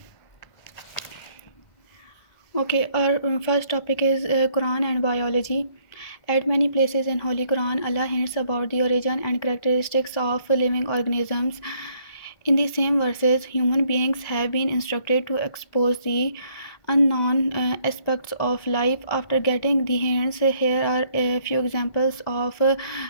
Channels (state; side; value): late; right; 2.0 ms